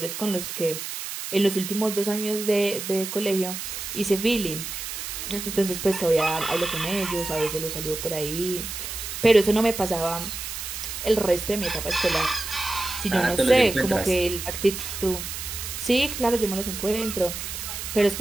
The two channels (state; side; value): noise; right; hiss, 7 dB below the sound